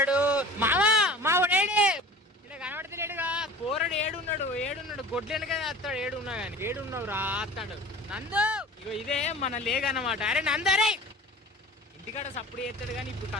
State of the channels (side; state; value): both; normal; correlation 0.41